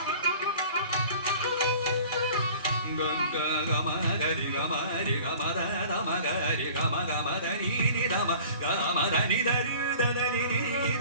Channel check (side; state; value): both; inverted; correlation -0.46